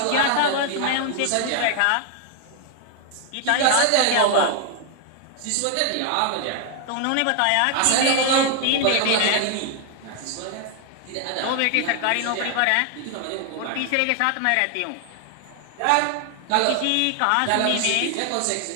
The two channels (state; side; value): different; both; correlation 0.00